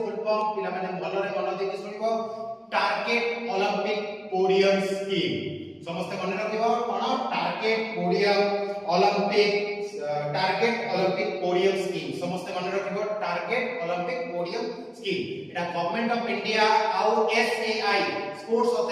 फुल फॉर्म पिला माने भलरे मन देकी सुनिवो टारगेट ओलंपिक पोडियम स्कीम समस्ते मन रखिवो कोन टारगेट ओलंपिक पोडियम स्कीम समस्ते मन रखिवो target Olympic podium scheme Etah government of India आउ SAI sports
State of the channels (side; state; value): both; identical; correlation 1.00